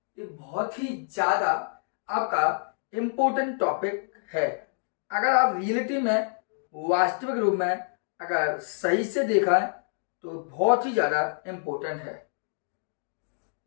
ये बहुत ही ज्यादा आपका इम्पोर्टेंट टॉपिक है। अगर आप रियलिटी में, वास्तविक रूप में अगर सही से देखा है तो बहुत ही ज्यादा इम्पोर्टेंट है।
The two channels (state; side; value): silent; right; digital silence